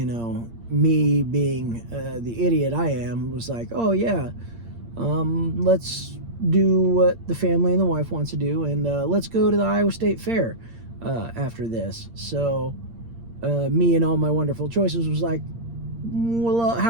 me being the idiot I am, was like, oh yeah, let's do what the family and the wife wants to do, and let's go to the Iowa State Fair after this. So me and all my wonderful choices was like, well,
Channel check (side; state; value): left; late; 8.7 ms